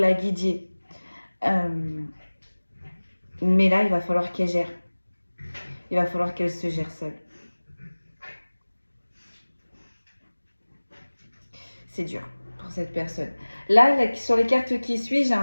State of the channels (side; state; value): both; inverted; correlation -1.00